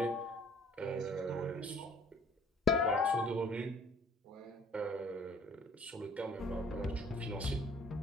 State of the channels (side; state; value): both; normal; correlation 0.55